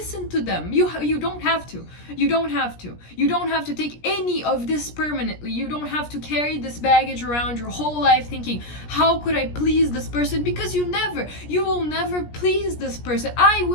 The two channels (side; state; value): right; late; 17 ms